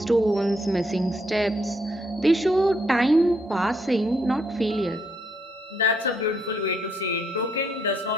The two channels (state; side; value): normal; both; correlation 0.73